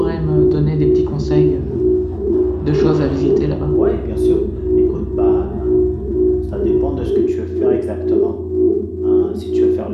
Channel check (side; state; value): both; identical; correlation 1.00